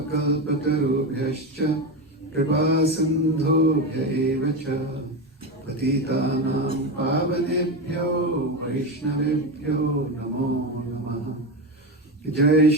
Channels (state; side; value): normal; both; correlation 0.16